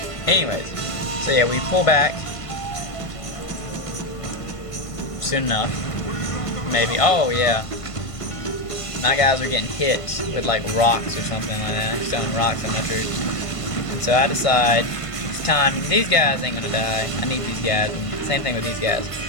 Anyways, so yeah, we pull back soon enough. Maybe. Oh yeah, my guys are getting hit with like rocks or something like that, throwing rocks at my troops. And so I decide it's time. These guys ain't gonna die. I need these guys. And same thing with these guys.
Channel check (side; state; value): right; late; 1.5 ms